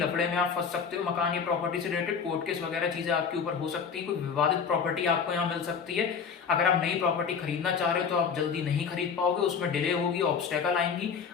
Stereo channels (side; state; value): right; quieter; 6.3 dB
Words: में आप फंस सकते हो, मकान या प्रॉपर्टी से रिलेटेड कोर्ट केस वगैरह चीजें आपके ऊपर हो सकती है। कोई विवादित प्रॉपर्टी आपको यहाँ मिल सकती है। अगर आप नई प्रॉपर्टी खरीदना चाह रहे हो तो आप जल्दी नहीं खरीद पाओगे, उसमें डिले होगी, ऑब्स्टेकल आएंगी,